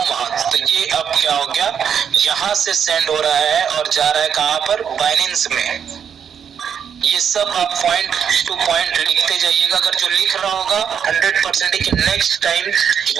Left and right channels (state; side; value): quieter; left; 7.7 dB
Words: वहां। तो ये अब क्या हो गया, यहाँ से सेंड हो रहा है और जा रहा है कहाँ पर, बाइनेंस में। ये सब आप पॉइंट टू पॉइंट लिखते जाइएगा। अगर जो लिख रहा होगा 100% कि नेक्स्ट टाइम